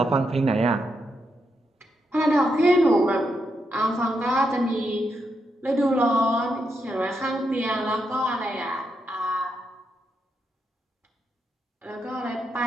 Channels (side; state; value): both; normal; correlation 0.82